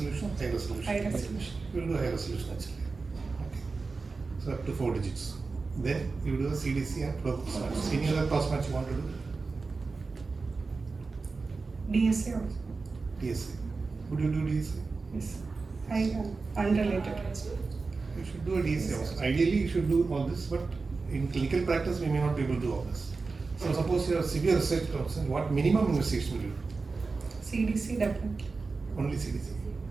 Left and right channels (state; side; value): quieter; left; 4.1 dB